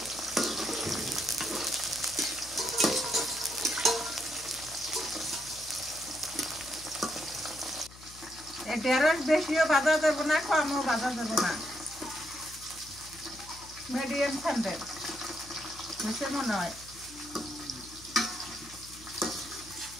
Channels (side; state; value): left; noise; hum, 19 dB below the sound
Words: ঢেঁড়স বেশিও বাঁধা যাবো না কমও বাঁধা যাবো না মিডিয়াম ঠান্ডার বুঝতে মনে হয়